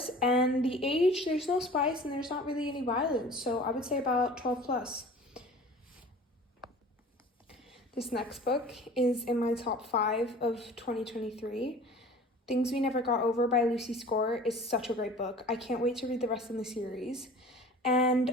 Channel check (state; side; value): normal; both; correlation 0.44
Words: and the age, there's no spice and there's not really any violence, so I would say about 12 plus. This next book is in my top 5 of 2023. Things We Never Got Over by Lucy Score is such a great book. I can't wait to read the rest of the series.